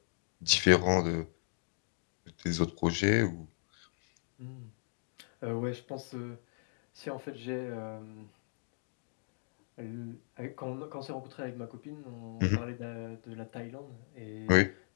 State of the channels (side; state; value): right; silent; digital silence